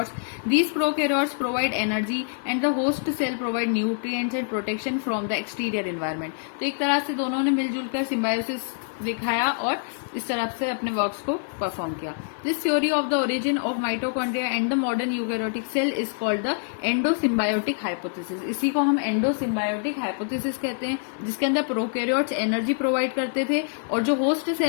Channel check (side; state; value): right; silent; digital silence